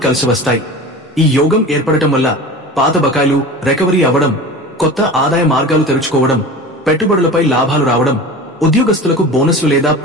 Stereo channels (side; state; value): both; normal; correlation 0.34